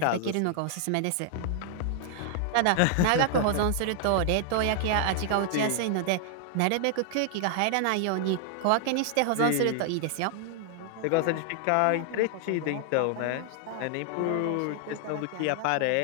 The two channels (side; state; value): both; different; correlation 0.00